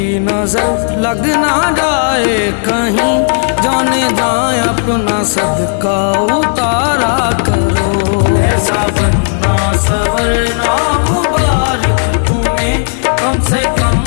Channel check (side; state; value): right; silent; digital silence